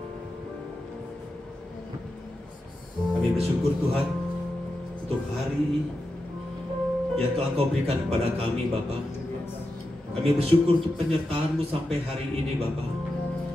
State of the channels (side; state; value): both; normal; correlation 0.89